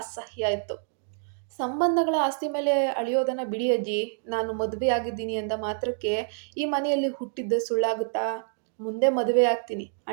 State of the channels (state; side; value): silent; left; digital silence